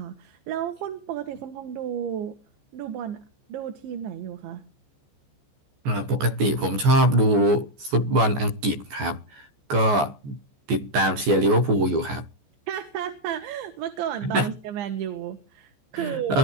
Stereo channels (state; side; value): late; left; 14 ms